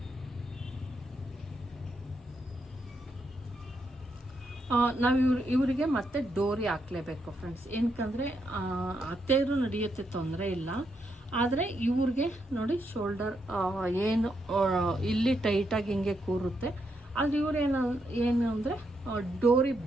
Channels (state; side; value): normal; both; correlation 0.80